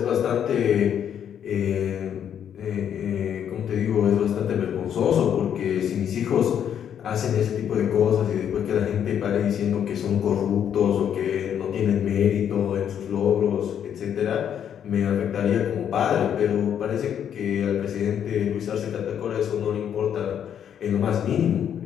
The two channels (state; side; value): quieter; right; 9.0 dB